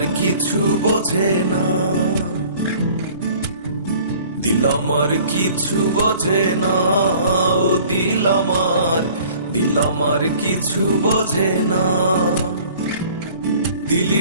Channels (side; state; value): both; inverted; correlation -0.50